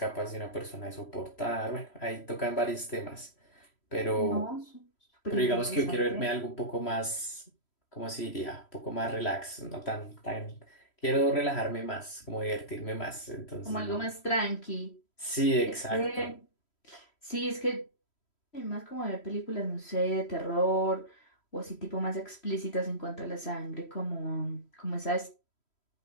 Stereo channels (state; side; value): late; right; 3.1 ms